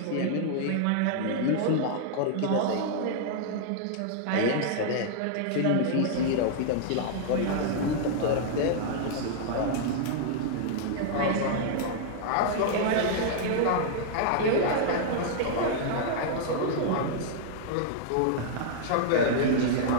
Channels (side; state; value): both; different; correlation -0.01